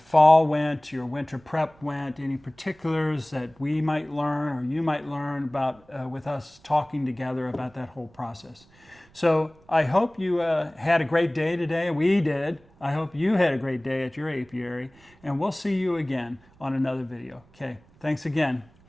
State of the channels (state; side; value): noise; right; rumble, 29 dB below the sound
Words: went, your winter prep went, any particulars that we might learn or you might learn about with us talking together about that whole process. So I hope you had a great day today. We did. I hope you had a great day at your apiary, and we'll see you again on another video. Okay, thanks again.